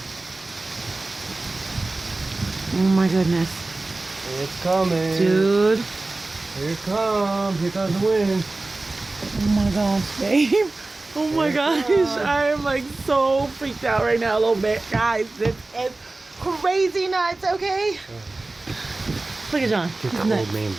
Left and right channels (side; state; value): left; quieter; 3.1 dB